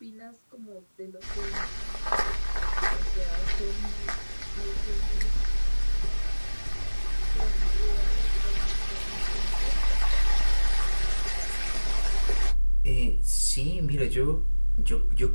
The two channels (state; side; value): inverted; both; correlation -1.00